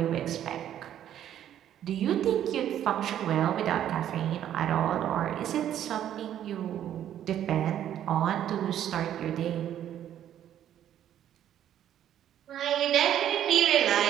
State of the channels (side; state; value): left; quieter; 10.9 dB